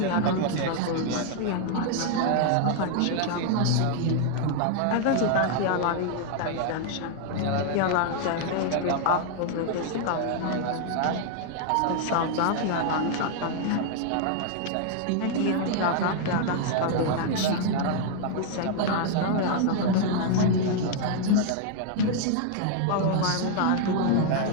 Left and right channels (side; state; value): both; different; correlation 0.00